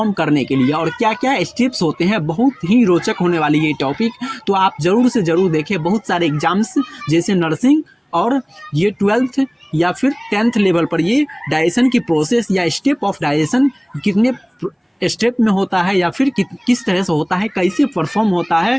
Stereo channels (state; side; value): identical; both; correlation 1.00